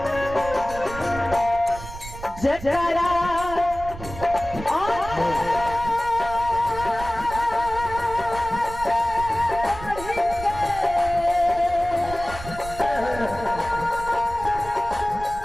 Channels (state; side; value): noise; right; rumble, 12 dB below the sound